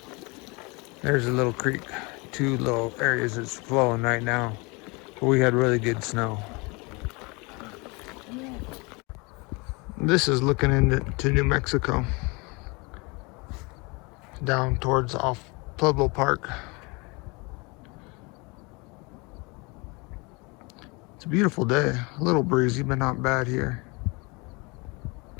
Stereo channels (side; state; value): right; quieter; 27.9 dB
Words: There's a little creek. Two little areas that's flowing right now. But we had really good snow. This is looking into New Mexico. Down towards off Pueblo Park. It's a beautiful day. A little breezy, but not bad here.